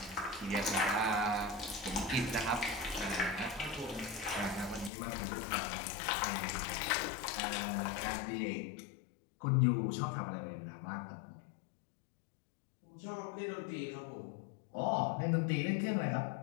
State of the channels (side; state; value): right; drops out; at 4.9 s